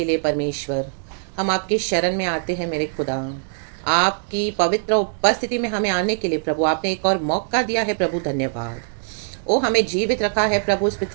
लिए परमेश्वर। हम आपकी शरण में आते हैं मेरे खुदा। आपकी पवित्र उपस्थिति में हमें आने के लिए प्रभु आपने एक और मौका दिया है प्रभु, धन्यवाद। ओ हमें जीवित रखा है प्रभु इस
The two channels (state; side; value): silent; left; digital silence